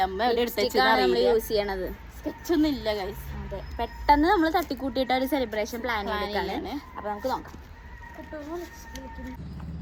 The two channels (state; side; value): identical; both; correlation 1.00